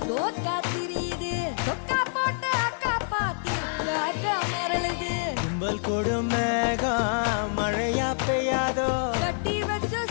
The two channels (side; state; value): right; silent; digital silence